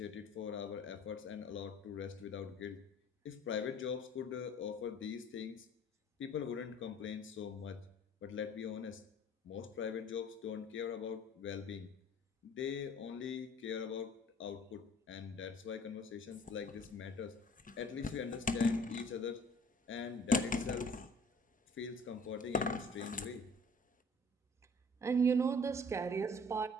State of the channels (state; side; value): normal; both; correlation 0.52